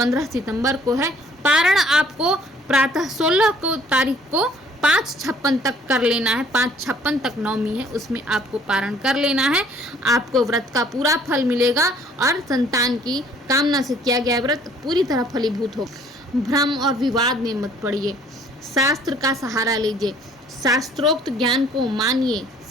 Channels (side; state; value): both; normal; correlation 0.58